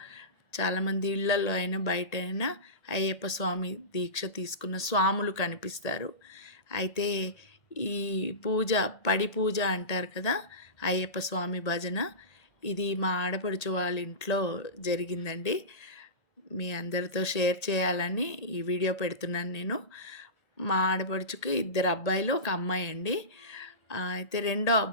చాలామంది ఇళ్లల్లో అయినా, బయట అయినా అయ్యప్ప స్వామి దీక్ష తీసుకున్న స్వాములు కనిపిస్తారు. అయితే ఈ పూజ, పడి పూజ అంటారు కదా! అయ్యప్ప స్వామి భజన ఇది మా ఆడపడుచు వాళ్ళ ఇంట్లో జరిగిందండి. మీ అందరితో షేర్ చేయాలని ఈ వీడియో పెడుతున్నాను నేను. మా ఆడపడుచుకి 2 అబ్బాయిలు, 1 అమ్మాయి అండి. అయితే రెండో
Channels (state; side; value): late; right; 1.8 ms